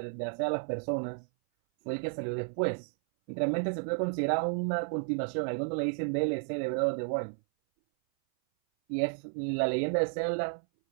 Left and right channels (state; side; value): silent; left; 56 dB below the other